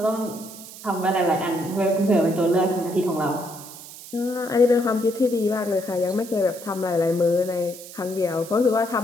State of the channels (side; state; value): right; noise; hiss, 15 dB below the sound